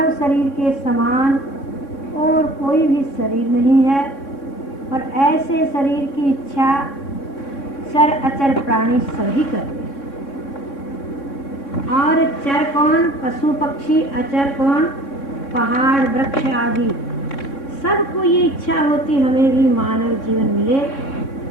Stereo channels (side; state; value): right; late; 3.6 ms